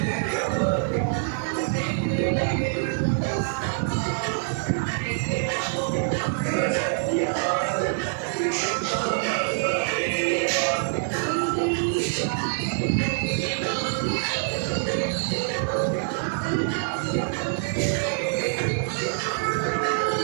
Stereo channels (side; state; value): left; silent; digital silence